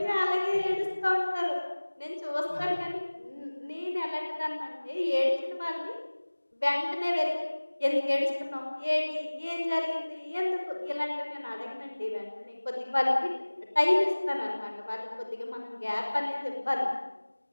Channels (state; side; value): inverted; both; correlation -1.00